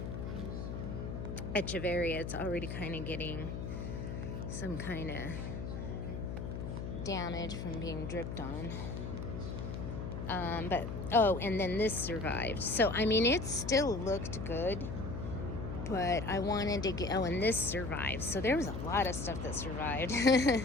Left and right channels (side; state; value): left; noise; hum, 5 dB below the sound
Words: Echeveria. It's already kind of getting some kind of damage from being dripped on. And then this survived. So, I mean, it still looked good, but I wanted to get, and this survived. So there was a lot of stuff that survived.